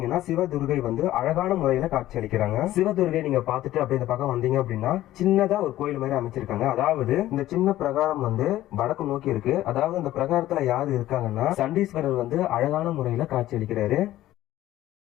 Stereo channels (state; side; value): quieter; right; 14.5 dB